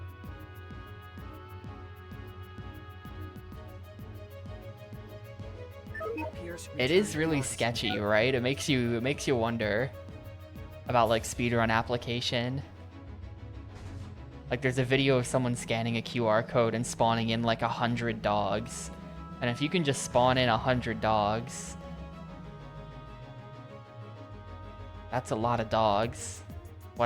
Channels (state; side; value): identical; both; correlation 1.00